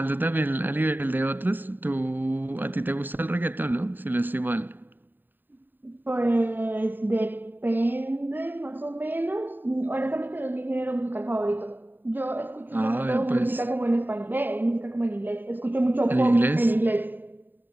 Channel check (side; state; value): left; late; 0.092 ms